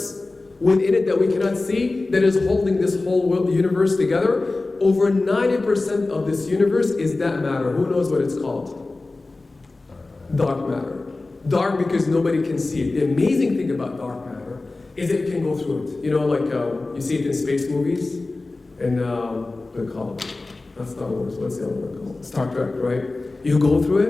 within it that we cannot see, that is holding this whole universe together. Over 90% of this universe is that matter. Who knows what it's called? Dark matter. Dark because nobody can see it. The amazing thing about dark matter is it can go through it. You know, like you see it in space movies, and what do you call it? Not Star Wars, what's the other one called? Star Trek, right? You go through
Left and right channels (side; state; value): right; quieter; 3.3 dB